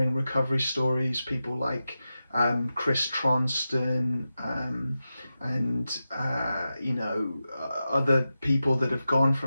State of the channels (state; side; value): inverted; both; correlation -0.92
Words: recovery stories, people like Chris Tronston, and other people that have gone